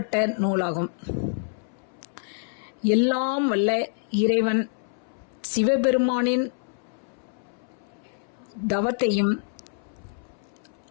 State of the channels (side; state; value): right; silent; 60 dB below the other